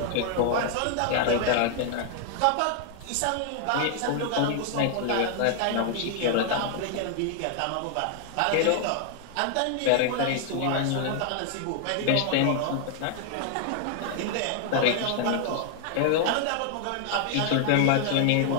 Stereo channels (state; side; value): different; both; correlation 0.00